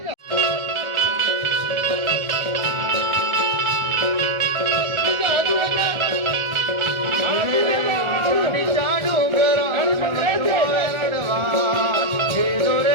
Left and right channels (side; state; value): left; late; 1.5 ms